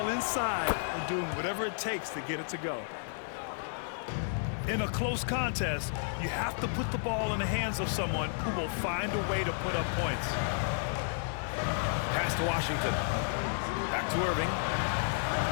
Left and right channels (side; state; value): right; silent; digital silence